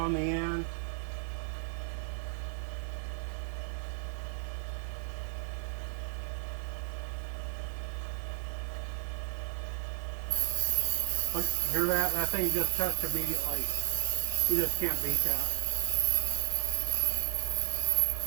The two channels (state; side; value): silent; left; 56 dB below the other